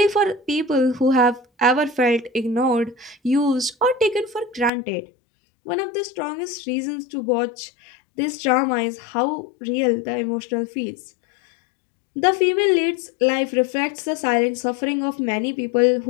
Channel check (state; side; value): drops out; right; at 4.7 s